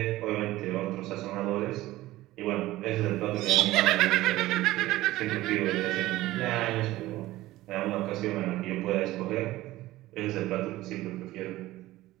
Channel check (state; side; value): quieter; left; 16.9 dB